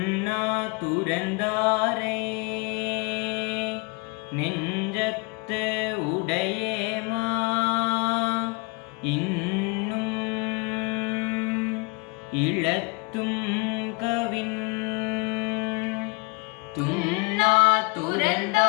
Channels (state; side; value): quieter; right; 28.4 dB